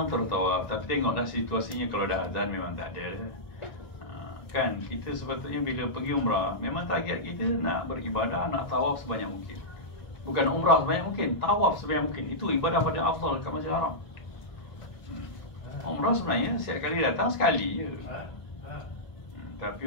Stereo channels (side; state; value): right; late; 1.9 ms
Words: tertawaf. Tapi tengoklah situasinya, kalau dah azan memang tak ada. Kan kita sepatutnya bila pergi umrah, memang target kita nak beribadah, nak tawaf sebanyak mungkin. Bukan umrah sebanyak mungkin, tawaf sebanyak mungkin. Itu ibadah pada afdal kat Masjidil Haram. Umrah sebenarnya setiap kali datang sekali je. Tapi